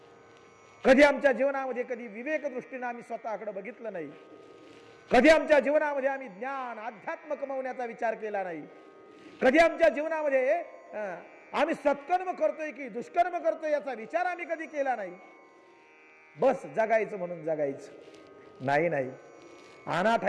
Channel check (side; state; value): both; identical; correlation 1.00